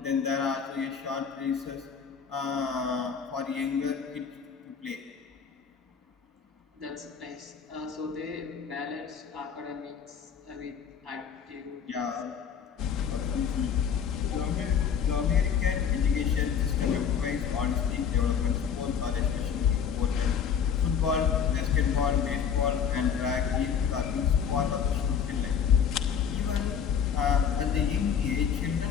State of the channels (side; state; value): right; quieter; 7.4 dB